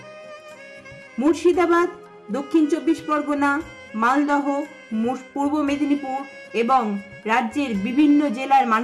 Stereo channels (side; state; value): both; identical; correlation 1.00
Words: মুর্শিদাবাদ, দক্ষিণ 24 পরগনা, মালদহ, পূর্ব মেদিনীপুর এবং রাজ্যের বিভিন্ন জেলার